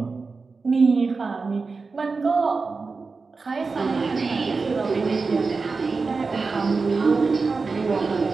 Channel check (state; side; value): quieter; left; 4.3 dB